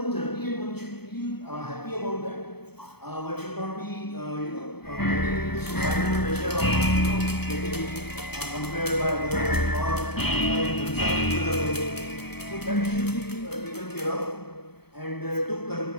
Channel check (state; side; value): late; right; 0.97 ms